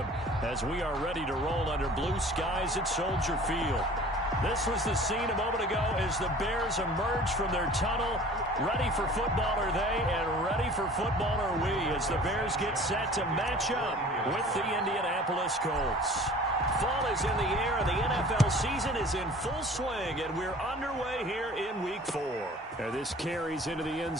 as we are ready to roll under blue skies at Soldier Field. This was the scene a moment ago as the Bears emerge from their tunnel. Ready for football are they, and ready for football are we as the Bears get set to match up with the Indianapolis Colts. Fall is in the air, and the NFL season is in full swing, and we're underway here in Week 4. And this carries into the end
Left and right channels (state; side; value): normal; both; correlation 0.46